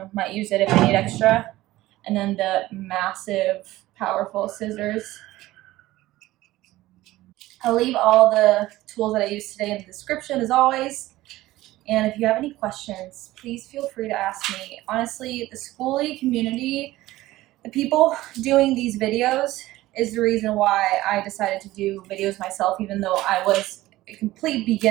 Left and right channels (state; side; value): quieter; left; 16.9 dB